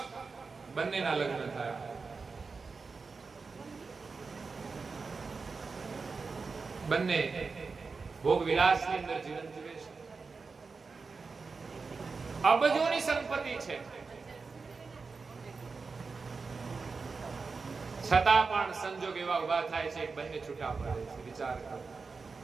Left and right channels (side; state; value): left; quieter; 4.6 dB